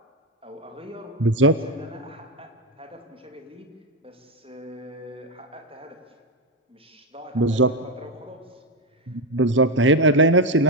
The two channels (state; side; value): normal; both; correlation 0.10